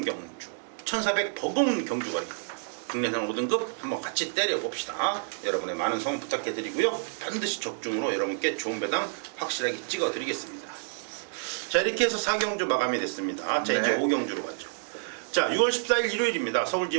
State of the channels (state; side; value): silent; left; digital silence